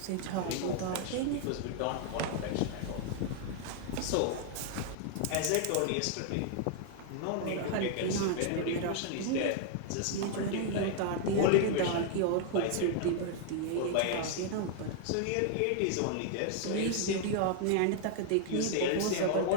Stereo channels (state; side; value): different; both; correlation 0.00